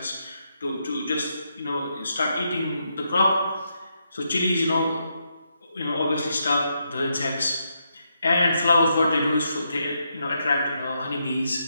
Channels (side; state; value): both; inverted; correlation -0.80